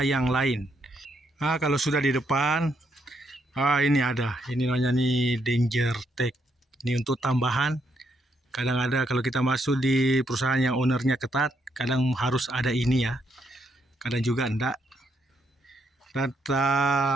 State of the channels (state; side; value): normal; both; correlation 0.76